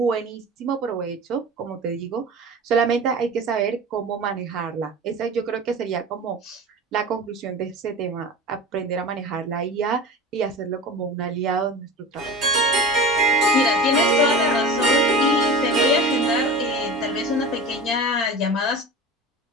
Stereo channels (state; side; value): normal; both; correlation 0.33